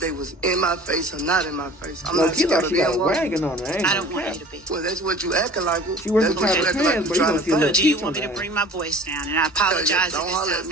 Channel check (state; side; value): normal; both; correlation 0.45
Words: was in my face or not in my face? I'm not scared of them. Wagging on her. I don't want you to be. Well, that's what you acting like. She that's what you acting like. But do you want me to bring my voice down? And I apologize don't if it holler sounds at